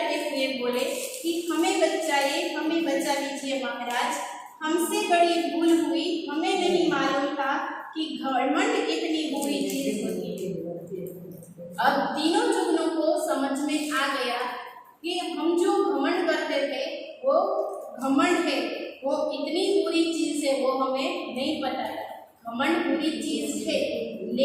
हुए बोले कि हमें बचाइए, हमें बचा लीजिए महाराज, हमसे बड़ी भूल हुई, हमें नहीं मालूम था कि घमंड इतनी बुरी चीज होती है। अब तीनों जुगनू को समझ में आ गया कि हम जो घमंड करते थे वो घमंड है, वो इतनी बुरी चीज है वो हमें नहीं पता है। घमंड बुरी चीज है,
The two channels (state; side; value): identical; both; correlation 1.00